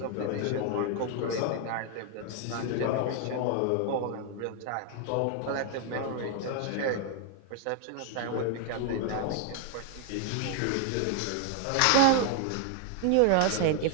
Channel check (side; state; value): both; different; correlation 0.00